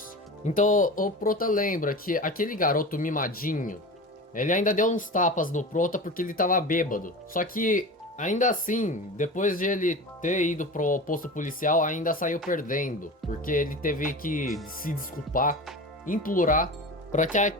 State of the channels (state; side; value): normal; both; correlation 0.31